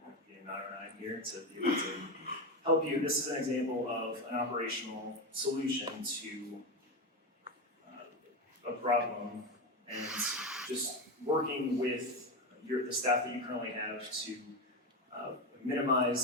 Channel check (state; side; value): normal; both; correlation 0.15